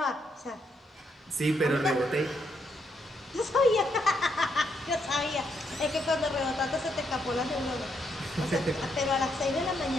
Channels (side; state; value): both; normal; correlation 0.76